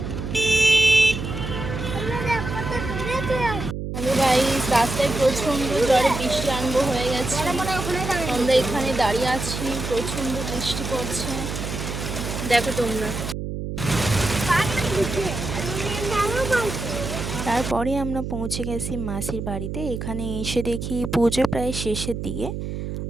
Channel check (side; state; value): right; noise; hum, 5 dB below the sound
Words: গাইস, রাস্তায় প্রচণ্ড জোরে বৃষ্টি আরম্ভ হয়ে গেছে। আমরা এখানে দাঁড়িয়ে আছি, প্রচণ্ড বৃষ্টি পড়ছে, দেখো তোমরা। তারপরে আমরা পৌঁছে গেছি মাসির বাড়িতে। এখানে এসে দেখি পুজো প্রায় শেষের দিকে,